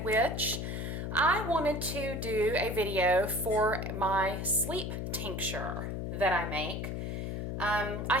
Witch. I wanted to do a video for my sleep tincture that I make. I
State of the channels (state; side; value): noise; left; hum, 3 dB below the sound